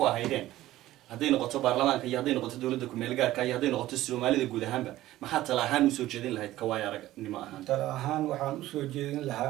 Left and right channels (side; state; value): left; quieter; 15.3 dB